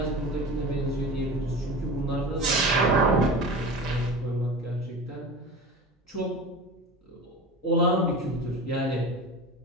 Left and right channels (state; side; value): normal; both; correlation 0.32